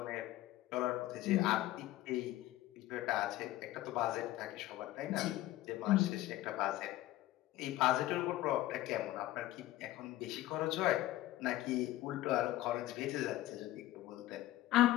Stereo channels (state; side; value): quieter; right; 15.8 dB